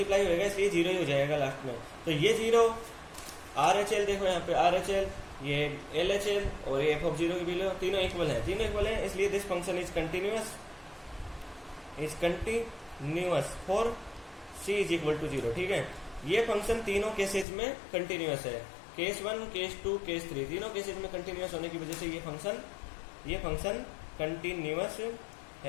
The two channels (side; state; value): right; drops out; at 17.4 s